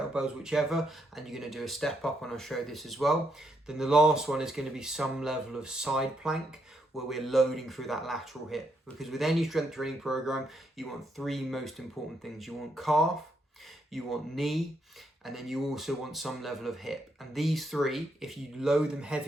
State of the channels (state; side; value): normal; both; correlation 0.77